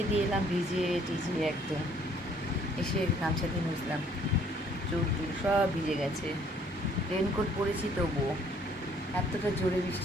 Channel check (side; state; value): both; normal; correlation 0.61